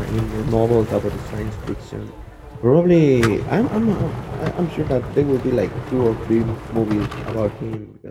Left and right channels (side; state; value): both; identical; correlation 1.00